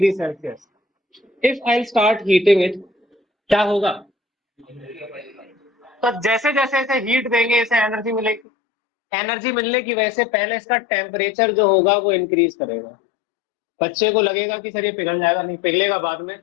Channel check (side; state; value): right; drops out; at 8.4 s